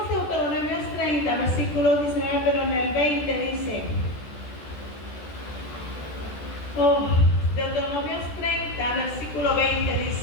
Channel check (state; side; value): late; right; 14 ms